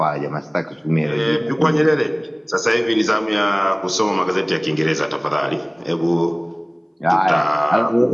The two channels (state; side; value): identical; both; correlation 1.00